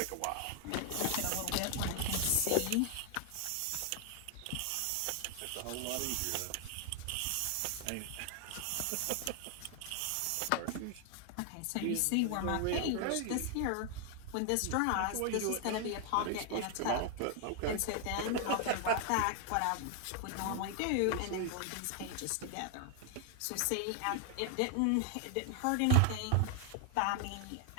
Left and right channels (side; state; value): both; different; correlation 0.00